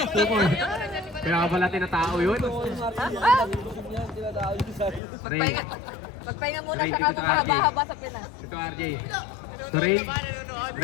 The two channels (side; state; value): right; drops out; at 5.0 s